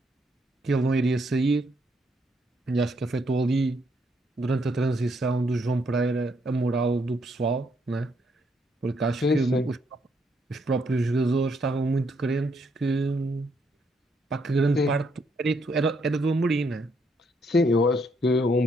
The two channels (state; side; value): normal; both; correlation 0.73